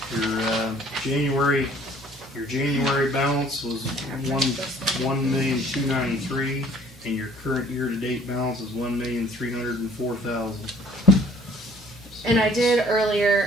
your January balance was $1,293,000, and your current year-to-date balance is $1,304,000. And I did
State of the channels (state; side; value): normal; both; correlation 0.56